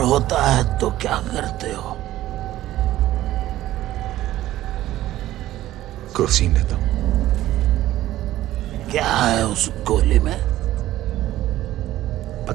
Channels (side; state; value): left; quieter; 14.6 dB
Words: होता है तो क्या करते हो? क्रोसिन लेता हूं। क्या है उस गोली में?